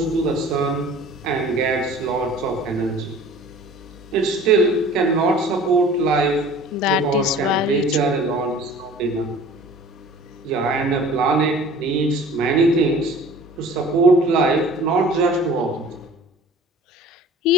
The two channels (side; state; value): both; normal; correlation 0.45